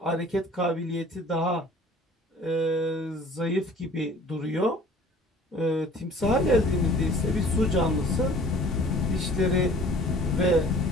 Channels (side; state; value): both; normal; correlation 0.49